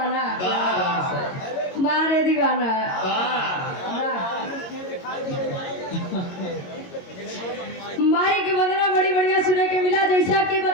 मारे दीवाना। माई की वंदना बड़ी बढ़िया सुने के मिला। जैसा कि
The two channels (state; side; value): late; right; 22 ms